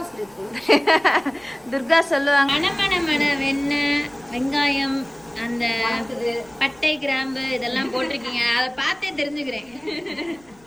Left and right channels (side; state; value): left; noise; rumble, 29 dB below the sound